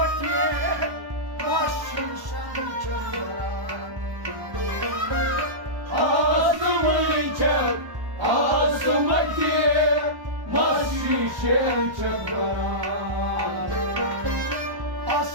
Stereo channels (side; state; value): left; late; 1.1 ms